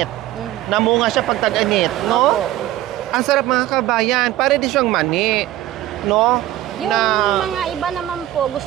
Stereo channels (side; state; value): left; quieter; 14.7 dB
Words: Namunga siya pag tag-init, no? Opo. Ang sarap mga kabayan. Pare di siyang mani, no? Yung na... mga iba naman po,